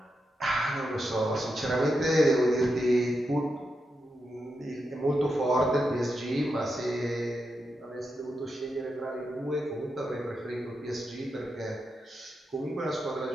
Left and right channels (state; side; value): normal; both; correlation 0.86